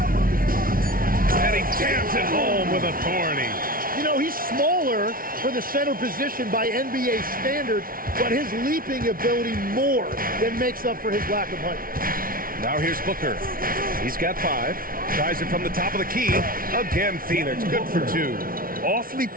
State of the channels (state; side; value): late; left; 0.42 ms